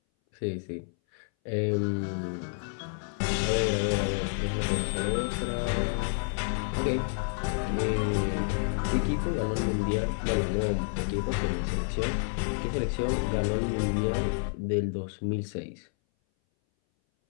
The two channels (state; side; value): silent; right; 58 dB below the other